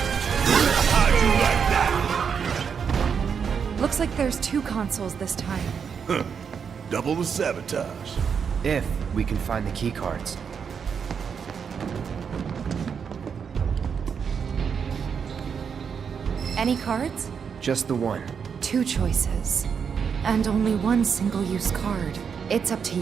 2 consoles this time. Huh. Double the sabotage. If we can find the keycards. Any cards? Just the one. 2 choices. And only 1 single-use card. It's up to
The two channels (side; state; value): left; quieter; 6.7 dB